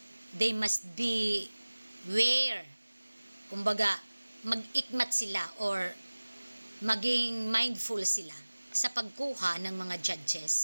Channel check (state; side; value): inverted; both; correlation -1.00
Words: they must be aware, kumbaga mag-ikmat sila or maging mindful sila sa pagkuha ng mga